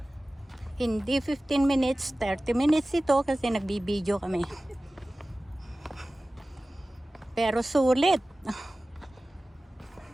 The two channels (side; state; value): both; normal; correlation 0.97